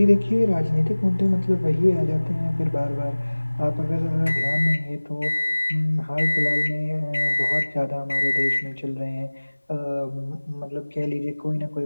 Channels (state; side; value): inverted; both; correlation -1.00